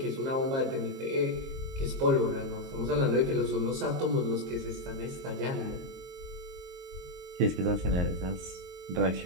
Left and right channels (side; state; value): left; late; 22 ms